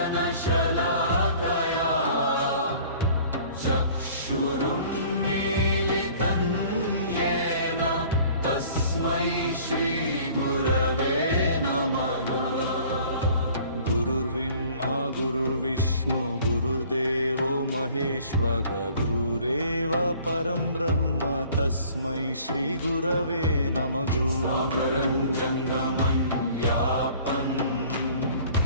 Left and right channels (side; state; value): both; inverted; correlation -0.52